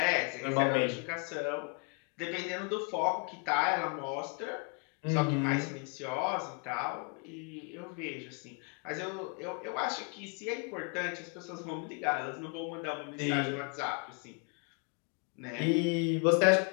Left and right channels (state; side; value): quieter; right; 35.2 dB